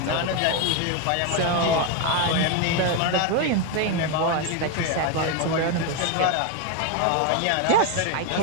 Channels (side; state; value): both; different; correlation 0.02